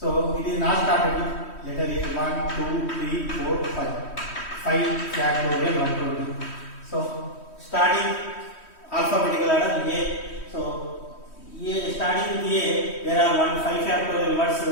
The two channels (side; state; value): right; late; 3.1 ms